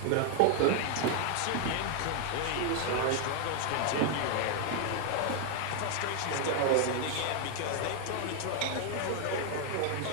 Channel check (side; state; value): both; different; correlation 0.00